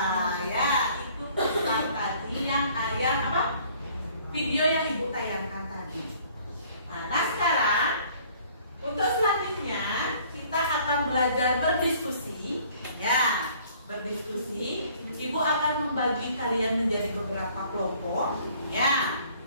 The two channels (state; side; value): inverted; both; correlation -0.57